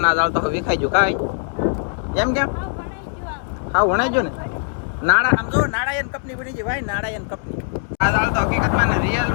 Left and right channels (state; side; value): silent; right; digital silence